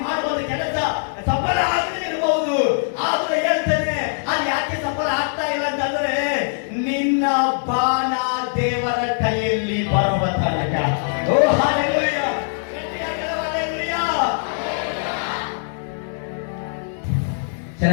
ಮಾಡುವಂತ ಕೆಲಸ ಸಫಲ ಆಗದೆ ಇರಬಹುದು. ಆದ್ರೆ ಹೇಳ್ತೇನೆ, ಅದು ಯಾಕೆ ಸಫಲ ಆಗ್ತಾ ಇಲ್ಲ ಅಂತಂದ್ರೆ ನಿನ್ನ ಬಾಣ ದೇವರ ಕೈಯಲ್ಲಿ ಬರುವ ತನಕ. ಓ ಹಲ್ಲೆಲೂಯಾ. ಹಲ್ಲೆಲೂಯಾ.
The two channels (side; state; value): right; silent; digital silence